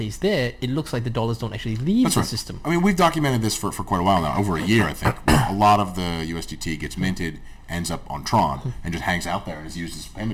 there, it looks like the dollars don't actually leave the system. I mean, we've documented this for quite a while now, over a year, I think. A lot of the USDT gets minted, ends up on Tron, and just hangs out there and is used as a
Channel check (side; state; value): both; identical; correlation 1.00